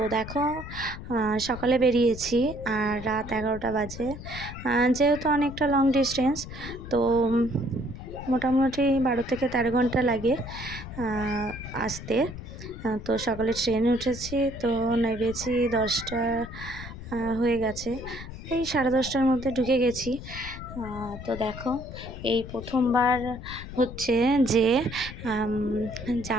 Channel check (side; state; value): left; noise; rumble, 11 dB below the sound